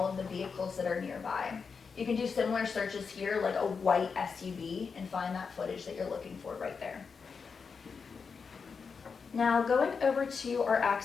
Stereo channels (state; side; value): quieter; right; 5.5 dB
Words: of the vehicles that are nearby. You can do similar searches here, like a white SUV, and find that footage that you're looking for right there. Now going over to our